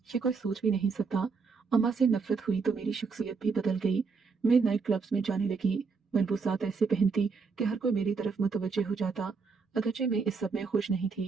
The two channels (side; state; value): left; quieter; 4.9 dB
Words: कोई सोच भी नहीं सकता। अम्मा से नफरत हुई तो मेरी शख्सियत भी बदल गई। मैं नाइट क्लब्स में जाने लगी, मलबूसात ऐसे पहनती कि हर कोई मेरी तरफ मुतवज्जे हो जाता। अगरचे मैं इस सब में खुश नहीं